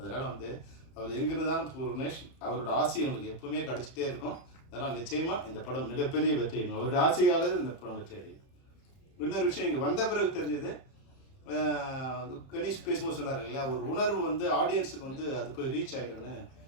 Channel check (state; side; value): late; right; 31 ms